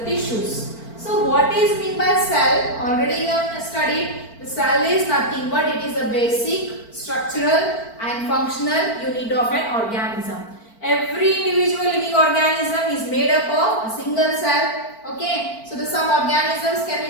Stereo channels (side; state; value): right; late; 4.4 ms